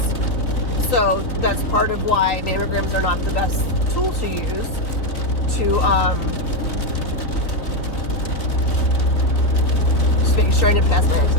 so that's part of why mammograms are not the best tool to use to just making sure I didn't pass my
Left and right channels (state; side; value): late; right; 3.4 ms